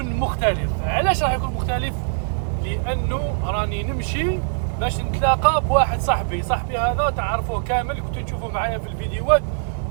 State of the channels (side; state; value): left; silent; 63 dB below the other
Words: مختلف. علاش راح يكون مختلف؟ لانه راني نمشي باش نتلاقى بواحد صاحبي هذا تعرفوه كامل، كنتو تشوفوا معايا في الفيديوهات،